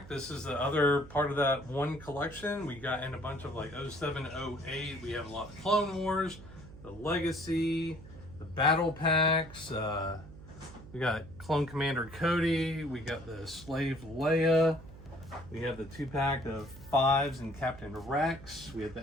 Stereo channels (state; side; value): noise; right; hum, 17 dB below the sound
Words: This is the other part of that one collection. We got in a bunch of like 07, 08. We have a lot of Clone Wars, the Legacy, the Battle Packs. We got Clone Commander Cody. We got the Slave Leia. We have the 2-pack of 5s and Captain Rex. We have the